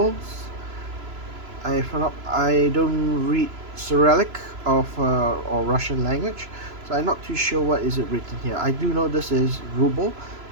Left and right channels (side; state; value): left; late; 3.0 ms